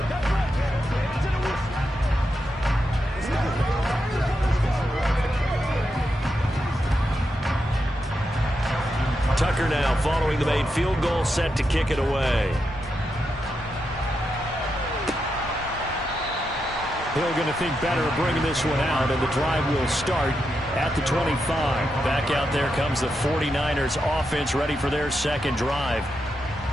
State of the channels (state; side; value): normal; both; correlation 0.85